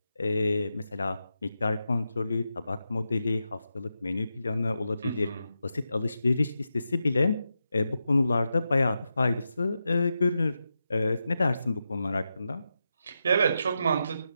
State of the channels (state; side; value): inverted; both; correlation -0.88